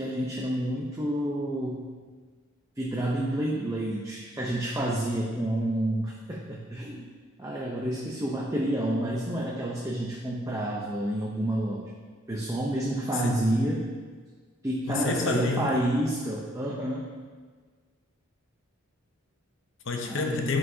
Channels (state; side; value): normal; both; correlation 0.70